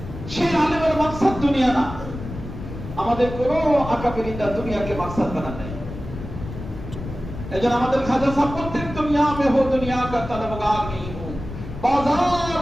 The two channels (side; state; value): left; noise; rumble, 10 dB below the sound